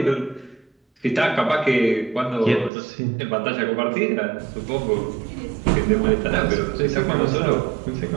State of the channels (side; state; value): left; drops out; at 2.7 s